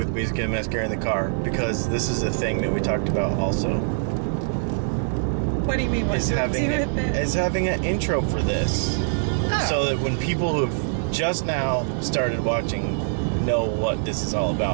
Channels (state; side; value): silent; left; digital silence